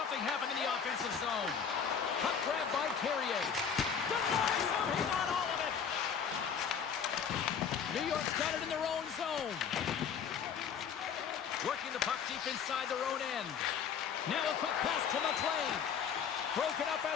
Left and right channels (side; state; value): right; quieter; 7.2 dB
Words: happen in the offensive zone. Puck grab by Carrier. Denies him, he got all of it. New York's got it in their own zone. Working the puck deep inside their own end. Now a quick pass to McLean. Broken up at